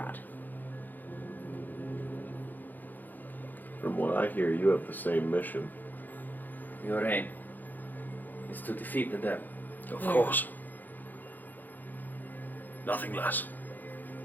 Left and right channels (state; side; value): late; right; 0.086 ms